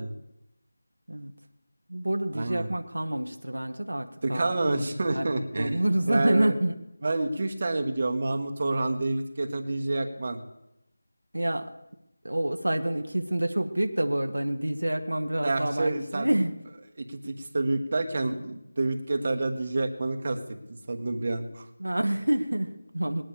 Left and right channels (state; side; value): inverted; both; correlation -0.98